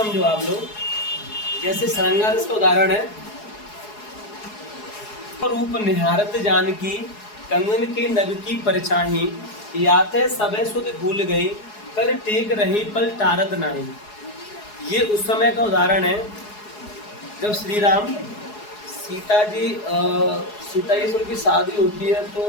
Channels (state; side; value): late; right; 4.8 ms